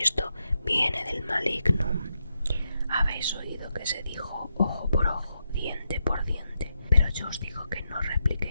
esto viene del maligno. Habéis oído que se dijo ojo por ojo, diente por diente, pero yo os digo que no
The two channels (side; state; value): both; inverted; correlation -0.84